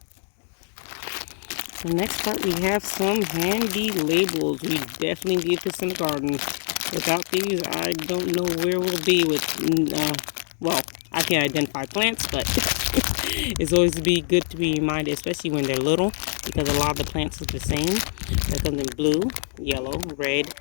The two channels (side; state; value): right; silent; 62 dB below the other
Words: The next part, we have some handy labels. We definitely need this in the garden. Without these, I don't know where we'll be with, well, I can identify plants, but it's always good to be reminded, especially when they're little, because a lot of the plants are the same. That comes in blue, yellow, red,